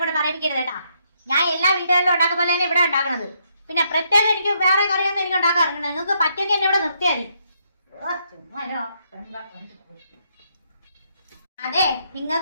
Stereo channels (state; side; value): inverted; both; correlation -0.75